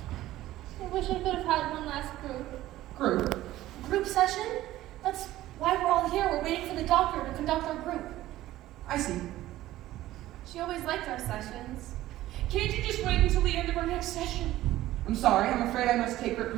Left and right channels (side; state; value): left; quieter; 15.2 dB